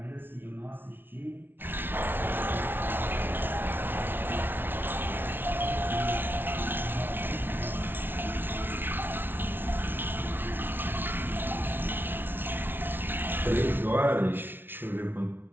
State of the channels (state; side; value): late; left; 0.10 ms